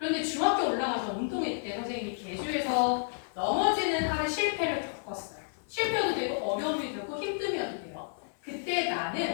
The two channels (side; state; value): right; silent; 57 dB below the other